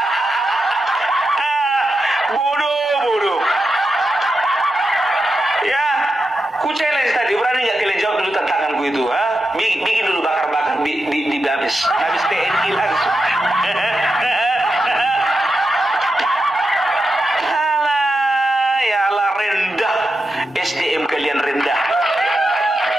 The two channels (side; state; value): both; normal; correlation 0.88